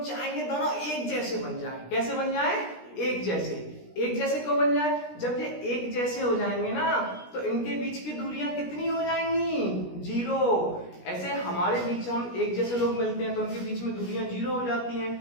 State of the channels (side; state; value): right; late; 17 ms